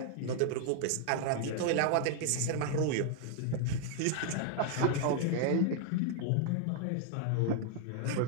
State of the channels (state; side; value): different; both; correlation 0.00